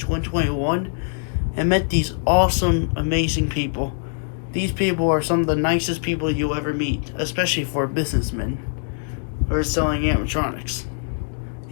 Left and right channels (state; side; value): silent; right; 64 dB below the other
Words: and met these awesome, amazing people. These people are some of the nicest people you'll ever meet, especially for businessmen who are selling animatronics